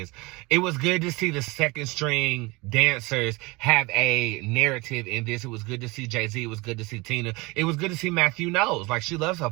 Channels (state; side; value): quieter; left; 24.3 dB